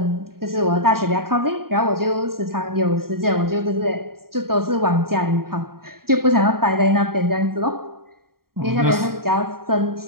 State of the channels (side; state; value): left; late; 0.93 ms